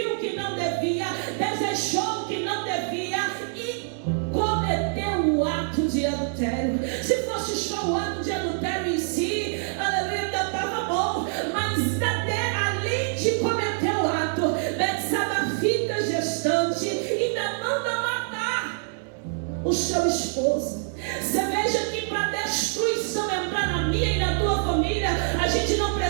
que não devia, desejou que não devia e cometeu o ato de adultério. Se fosse só o ato de adultério em si, aleluia, ainda estava bom. Mas além de cometer o ato, Betsabá fica gestante e ainda manda matar o seu esposo. Você veja que para destruição entrar na minha e na tua família, a gente não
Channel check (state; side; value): silent; left; digital silence